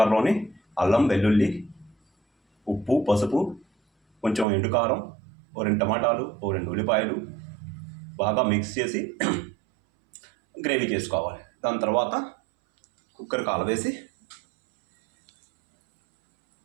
అల్లం, వెల్లుల్లి, ఉప్పు, పసుపు, కొంచెం ఎండుకారం, 2 టమాటాలు, 2 ఉల్లిపాయలు బాగా మిక్స్ చేసి గ్రేవీ చేసుకోవాలి. దాని తర్వాత కుక్కర్ కాలవేసి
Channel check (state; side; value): drops out; left; at 4.5 s